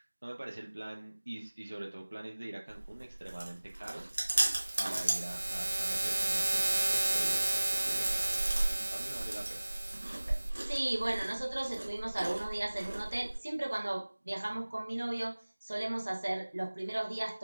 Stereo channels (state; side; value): inverted; both; correlation -1.00